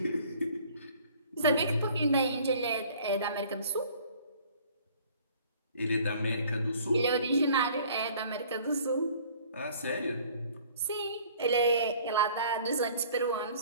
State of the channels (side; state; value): both; inverted; correlation -0.53